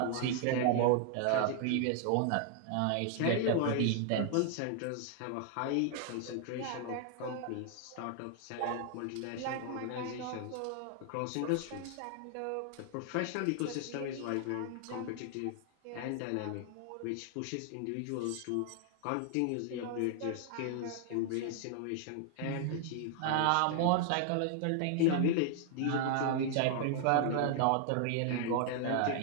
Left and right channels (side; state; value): both; different; correlation 0.00